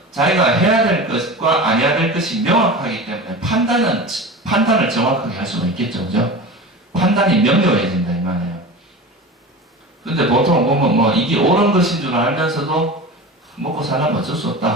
자기가 해야 될 것과 안 해야 될 것이 명확하기 때문에 판단을 정확하게 할 수가 있겠죠. 그죠? 판단이 명료해진다 이 말이에요. 근데 보통 보면 뭐 이게 옳은 것인 줄 알면서도 먹고 살려면 어쩔 수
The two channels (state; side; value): normal; both; correlation 0.31